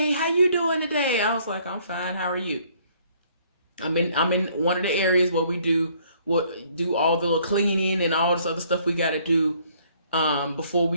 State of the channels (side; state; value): both; inverted; correlation -0.63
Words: how you doing today? I was like, I'm fine. How are you? I'm in one of the areas where we do all the cleaning and all this other stuff we got to do before